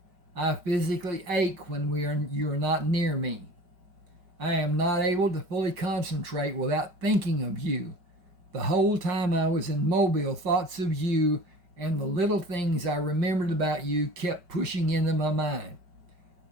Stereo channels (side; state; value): left; late; 5.2 ms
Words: I physically ache when you are not near me. I am not able to fully concentrate without thinking of you. The whole time I was in Mobile, thoughts of you and the little things I remembered about you kept pushing into my mind.